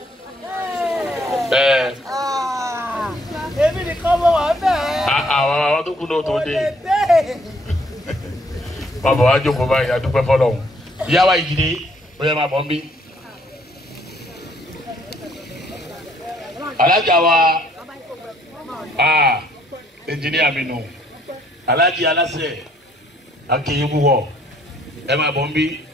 Èmi nìkan mọ̀ wá bẹ́ẹ̀. Àwọn tó kú náà tó dé. Bàbá wa jókòó báyìí adúpẹ́ fọlọ́hún. Ìyá wa ìdílé ó yẹ máa bọ̀ ń bí. Alájà wa ẹnjìníà mi nù. Alájì aláṣẹ akéyébú wọ̀ ẹ máa bọ̀ ń bí.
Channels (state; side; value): normal; both; correlation 0.65